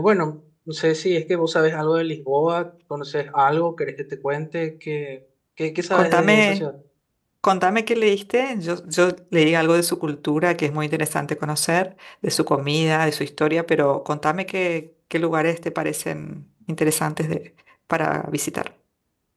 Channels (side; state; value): both; identical; correlation 1.00